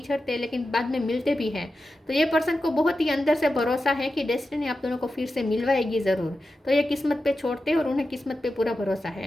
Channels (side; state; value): both; normal; correlation 0.91